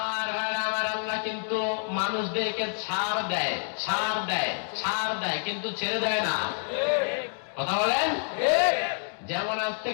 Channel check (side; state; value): right; silent; digital silence